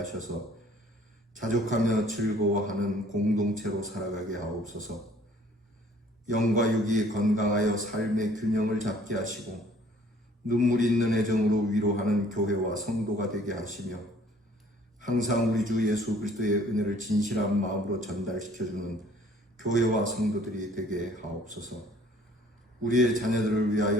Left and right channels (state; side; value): normal; both; correlation 0.56